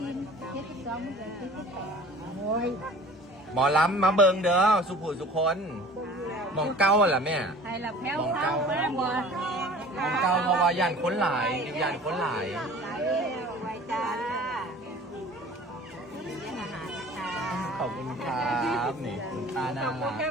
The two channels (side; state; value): both; normal; correlation 0.45